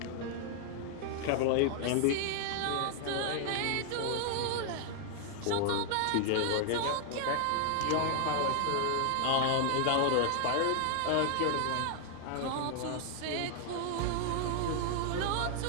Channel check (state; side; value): different; both; correlation 0.00